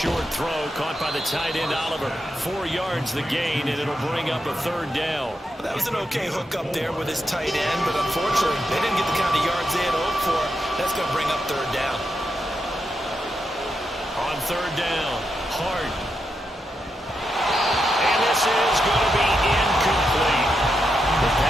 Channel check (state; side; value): normal; both; correlation 0.85